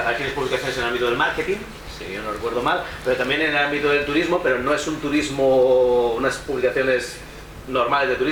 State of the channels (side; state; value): both; identical; correlation 1.00